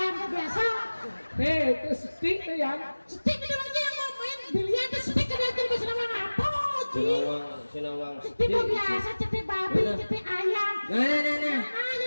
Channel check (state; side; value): inverted; both; correlation -1.00